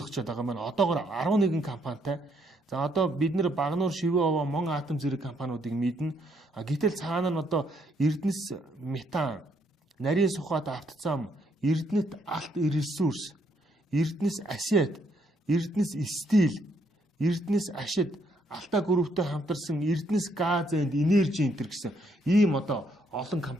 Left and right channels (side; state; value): both; normal; correlation 0.72